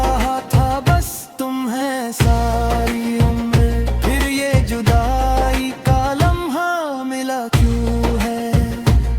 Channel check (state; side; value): identical; both; correlation 1.00